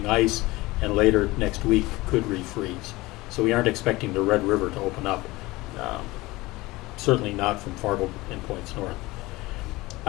ice, and later next week could refreeze. So we aren't expecting the Red River to open up, certainly not from Fargo and points north.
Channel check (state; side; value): quieter; right; 20.5 dB